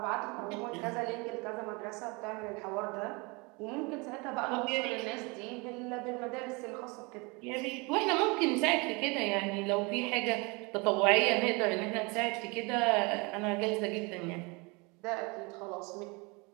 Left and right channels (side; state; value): left; quieter; 28.2 dB